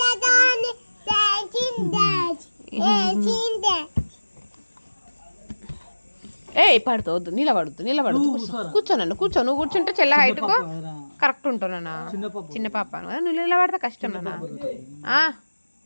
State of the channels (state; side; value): inverted; both; correlation -1.00